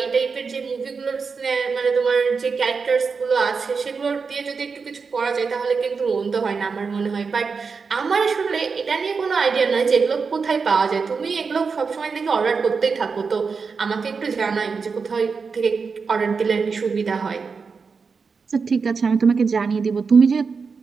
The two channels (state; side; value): quieter; left; 5.1 dB